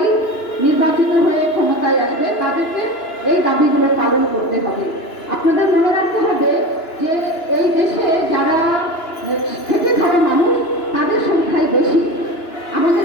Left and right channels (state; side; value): late; right; 2.9 ms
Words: নির্বাচিত হয়ে ক্ষমতায় আসবে তাদেরকে এই দাবিগুলো পালন করতে হবে। আপনাদের মনে রাখতে হবে যে এই দেশে যারা খেটে খাওয়া মানুষ তাদের সংখ্যাই বেশি। আমাদের